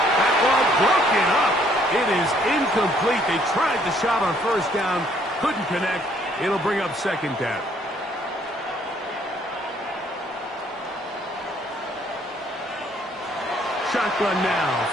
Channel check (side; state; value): both; normal; correlation 0.64